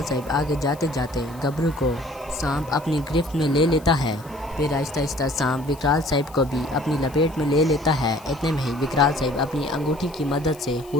साहब आगे जाते जाते गबरू को सांप अपनी गिरफ्त में ले लेता है। फिर आहिस्ता आहिस्ता सांप विकराल साहब को भी अपनी लपेट में ले लेता है। इतने में ही विकराल साहब अपनी अंगूठी की मदद से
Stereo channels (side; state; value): left; noise; hiss, 24 dB below the sound